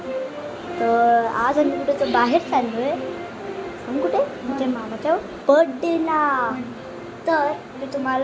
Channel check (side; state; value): both; identical; correlation 1.00